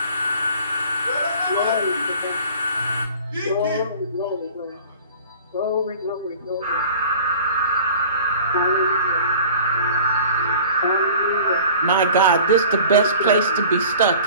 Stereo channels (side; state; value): both; inverted; correlation -0.45